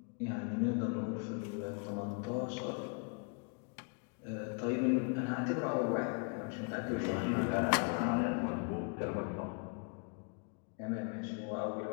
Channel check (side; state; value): right; quieter; 38.4 dB